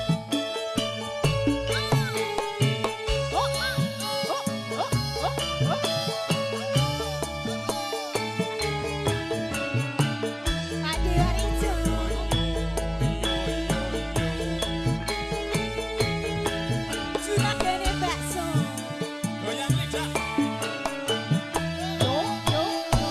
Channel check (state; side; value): identical; both; correlation 1.00